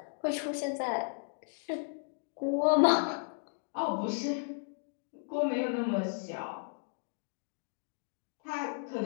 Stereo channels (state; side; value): silent; right; digital silence